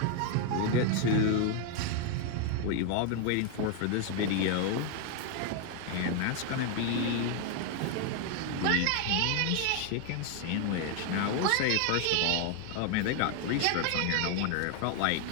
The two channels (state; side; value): different; both; correlation 0.01